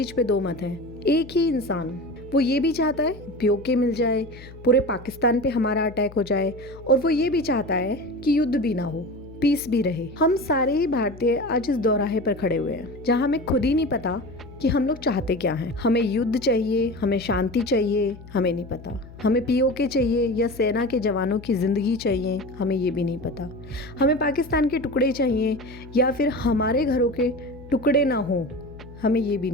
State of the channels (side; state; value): left; noise; hum, 18 dB below the sound